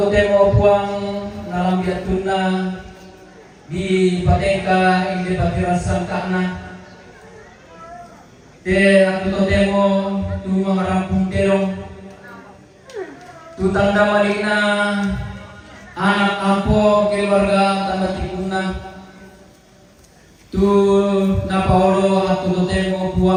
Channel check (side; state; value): both; identical; correlation 1.00